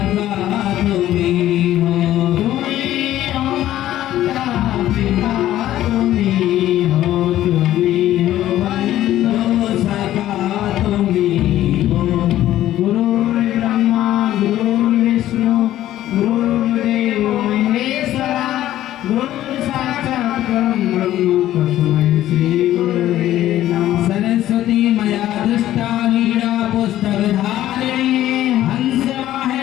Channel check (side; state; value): right; quieter; 13.4 dB